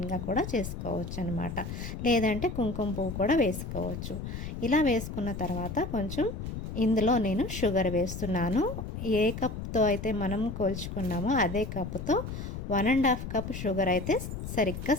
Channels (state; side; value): noise; left; rumble, 7 dB below the sound